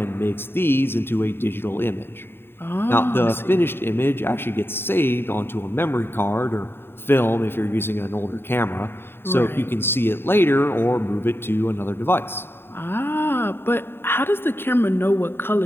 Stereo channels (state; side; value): late; right; 0.11 ms